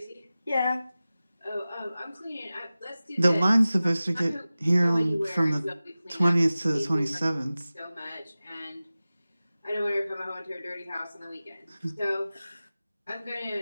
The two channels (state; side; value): inverted; both; correlation -0.96